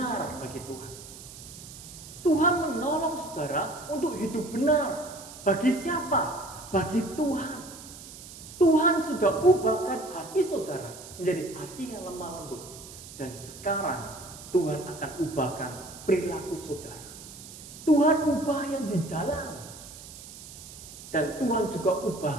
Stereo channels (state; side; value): noise; right; hiss, 15 dB below the sound